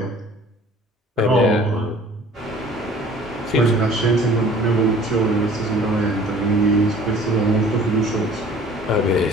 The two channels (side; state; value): both; normal; correlation 0.50